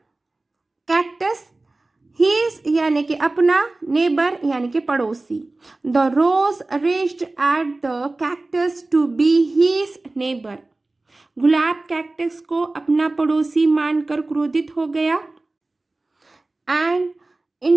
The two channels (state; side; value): quieter; left; 3.1 dB